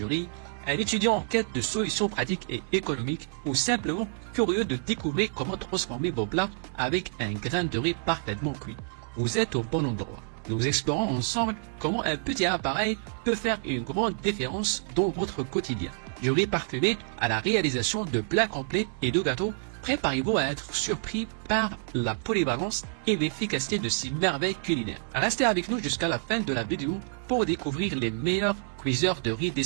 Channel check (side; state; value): left; silent; 57 dB below the other